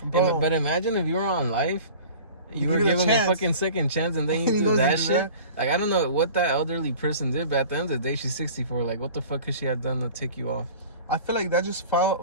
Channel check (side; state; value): both; inverted; correlation -0.42